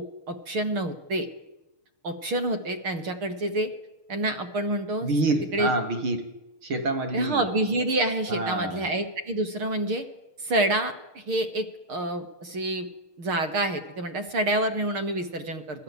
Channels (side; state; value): left; late; 6.5 ms